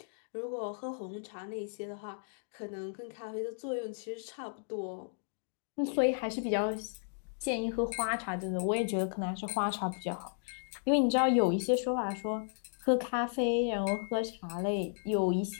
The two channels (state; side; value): silent; right; digital silence